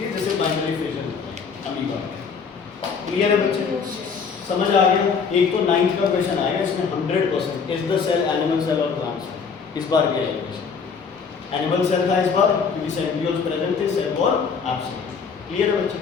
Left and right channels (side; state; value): right; quieter; 5.7 dB